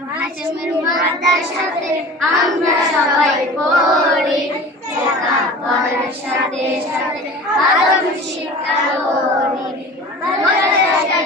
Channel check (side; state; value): both; normal; correlation 0.39